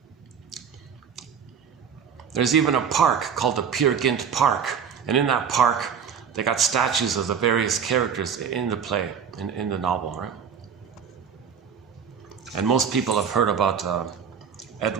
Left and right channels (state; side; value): quieter; left; 7.1 dB